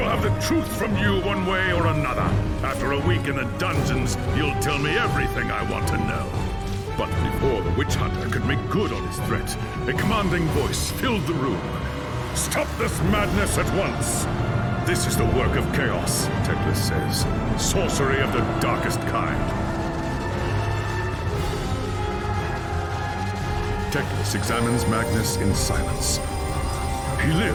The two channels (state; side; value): identical; both; correlation 1.00